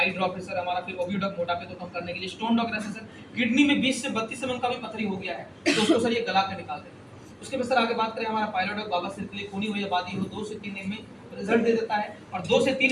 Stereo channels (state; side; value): identical; both; correlation 1.00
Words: ड्रॉप है सर हमारा, फिर ओबिडॉक मोटापे को कम करने के लिए, स्टोन डॉग है सर किडनी में 20 से 32 mm का भी पथरी हो गया है तो उसको सर ये गला कर निकालते हैं। उसके बाद सर आगे बात करें हमारा पायलोडॉक, बाबा सिर के लिए, खूनी हुई आबादी हो 2 से 3 दिन में रिजल्ट दे देता है, और 2 से